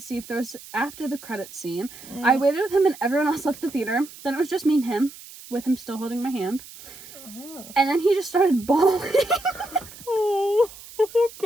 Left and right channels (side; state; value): right; noise; hiss, 17 dB below the sound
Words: see if there was after the credits scene. I waited with him and everyone else left the theater. Then it was just me and him, with him still holding my hand. And then he just started bawling. Oh,